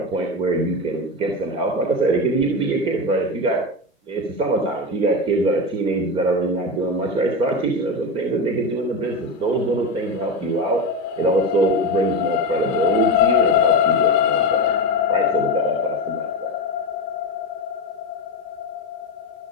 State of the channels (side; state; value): both; normal; correlation 0.18